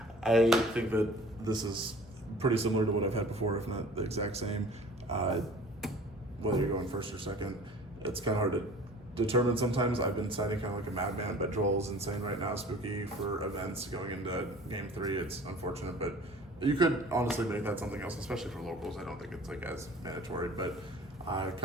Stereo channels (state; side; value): normal; both; correlation 0.46